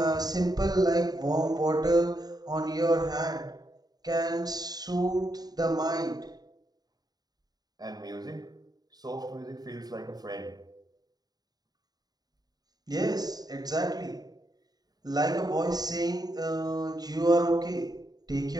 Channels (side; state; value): left; late; 0.19 ms